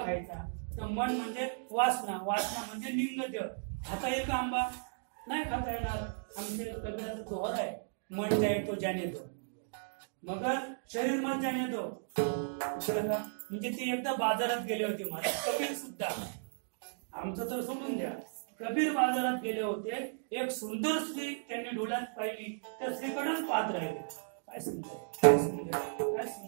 खायचा. तर मन म्हणजे वासना, वासना म्हणजे लिंग देह. खाता येईल का आंबा? नाही खाता येणार. आमचे कबीराचा दोहर आहे, मन जाय तो जाने दो मगर शरीर मत जाने दो. म्हणजे ते एकदा बाजारात गेले होते महाराज कबीर सुद्धा. आमचं तर सोडून द्या, कबीर बाजारात गेले होते. एक सुंदर स्त्री त्यांनी डोळ्यात पाहिली. त्या स्त्रीकडेच पाहत राहिले. काय सुंदर, काय सुंदर, काय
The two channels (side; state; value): left; silent; digital silence